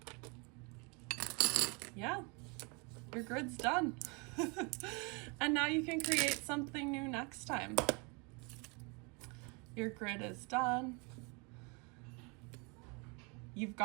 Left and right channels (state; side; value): quieter; left; 31.2 dB